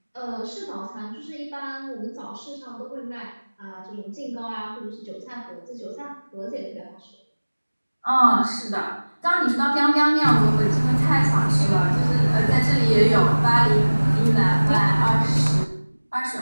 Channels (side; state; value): both; inverted; correlation -1.00